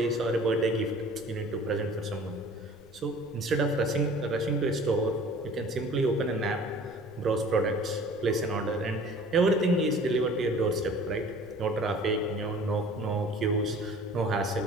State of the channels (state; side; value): noise; left; rumble, 27 dB below the sound